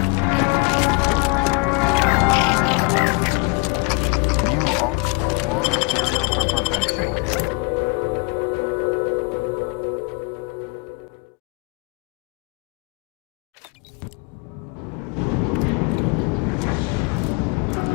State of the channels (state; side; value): quieter; right; 31.3 dB